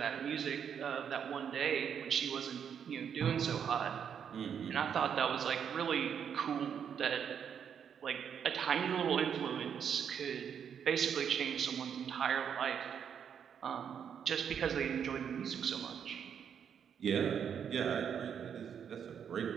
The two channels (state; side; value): quieter; left; 7.9 dB